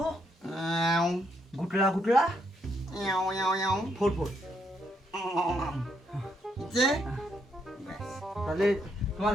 গুটলা গুটলা 44। যে তাহলে তোমার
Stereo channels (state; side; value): normal; both; correlation 0.75